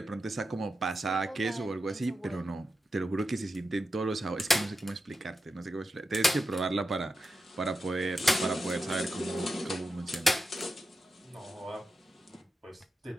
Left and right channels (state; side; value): normal; both; correlation 0.89